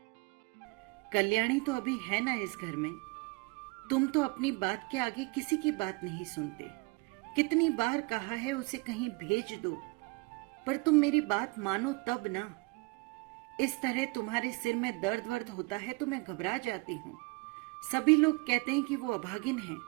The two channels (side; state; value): left; quieter; 28.4 dB